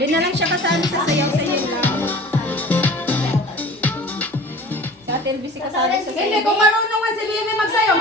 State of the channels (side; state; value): both; normal; correlation 0.42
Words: na lang siya kasali sa sayaw-sayaw lang. Sa television kasali sa Hindi, kung marunong man si Bibi magsayaw,